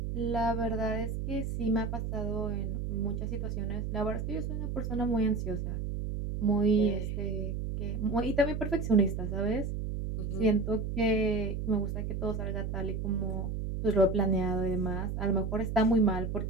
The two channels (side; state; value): right; noise; hum, 3 dB below the sound